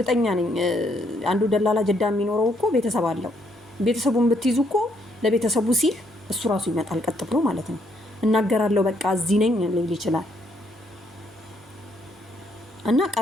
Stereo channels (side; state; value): both; normal; correlation 0.72